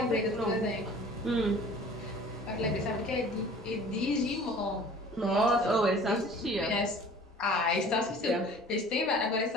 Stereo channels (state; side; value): normal; both; correlation 0.47